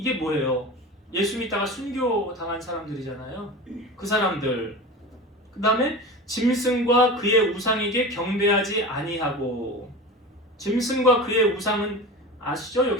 뭐예요? 예수 믿다가 순교 당한 사람들이잖아요. 그 사람들. 그 다음에 짐승과 그의 우상에게 경배하지 아니하고. 짐승과 그의 우상은 아시죠?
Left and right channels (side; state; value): both; normal; correlation 0.31